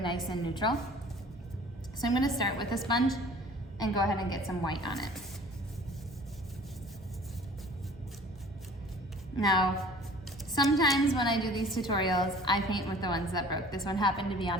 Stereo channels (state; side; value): normal; both; correlation 0.48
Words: and neutral. So I'm gonna start with a sponge and go ahead and get some white on it. Now, sometimes when I do these tutorials, I paint with the ones that broke. This one happened to be on